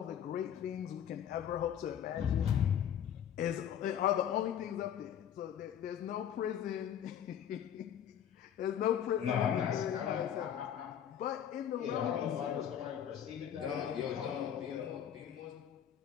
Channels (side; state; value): right; quieter; 9.4 dB